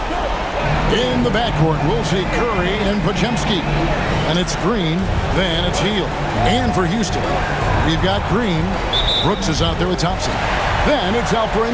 In the backcourt, we'll see Curry and Podziemski. And it's Green, then it's Hield. And for Houston, we've got Green. Brooks is out there with Thompson. Then it's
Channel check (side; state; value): both; identical; correlation 1.00